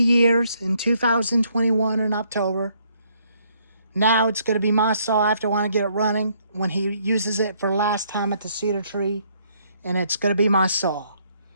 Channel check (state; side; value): inverted; both; correlation -0.69